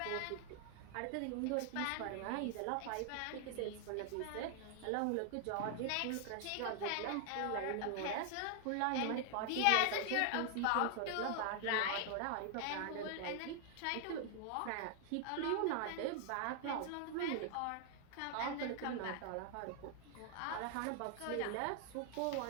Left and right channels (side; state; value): both; different; correlation 0.00